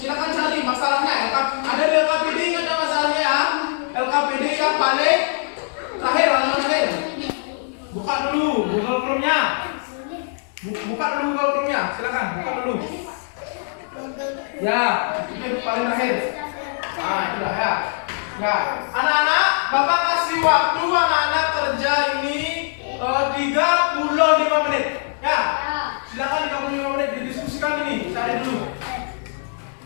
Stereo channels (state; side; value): silent; right; 58 dB below the other